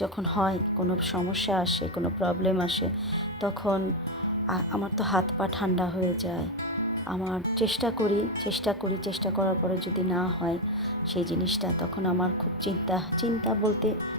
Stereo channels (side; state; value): both; normal; correlation 0.09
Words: যখন হয়, কোনো সমস্যা আসে, কোনো প্রবলেম আসে, তখন আমার তো হাত পা ঠান্ডা হয়ে যায়। আমার চেষ্টা করার পরে যদি না হয় সেই জিনিসটা, তখন আমার খুব চিন্তা বলতে